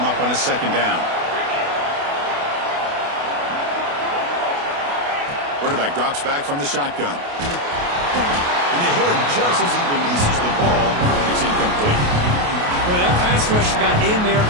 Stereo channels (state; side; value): late; left; 28 ms